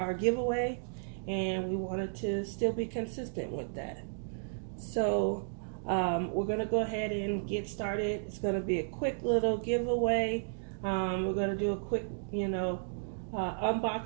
giveaway, and we wanted to still be consistent with that. So we're going to go ahead and get started. It's going to be a quick little giveaway. We're going to do a quick,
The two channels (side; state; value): left; silent; digital silence